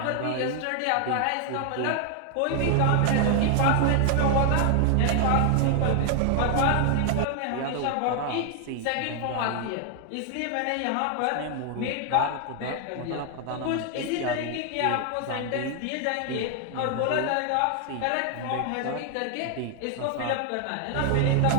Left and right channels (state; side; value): different; both; correlation 0.00